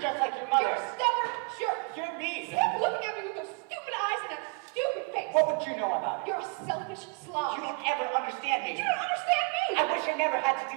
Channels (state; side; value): quieter; left; 34.6 dB